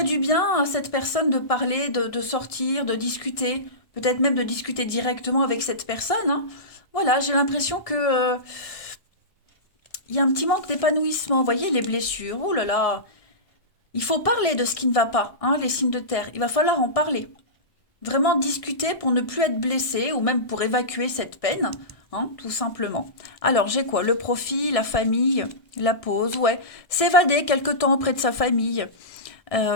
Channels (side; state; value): right; late; 1.6 ms